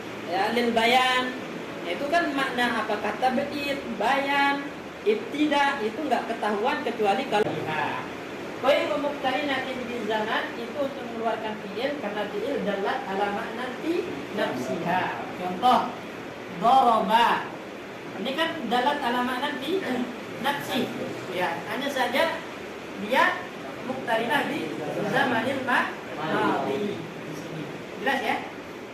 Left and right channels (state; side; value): identical; both; correlation 1.00